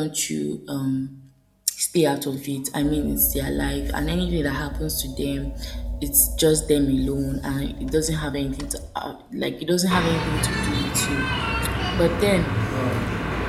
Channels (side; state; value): both; identical; correlation 1.00